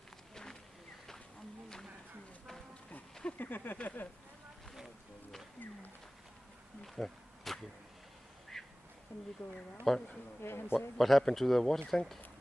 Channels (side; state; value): both; normal; correlation 0.98